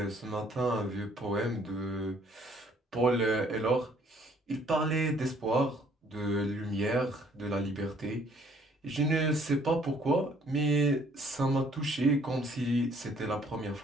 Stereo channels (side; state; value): both; normal; correlation 0.61